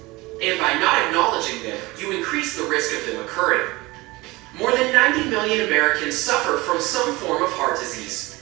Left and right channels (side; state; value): left; quieter; 21.7 dB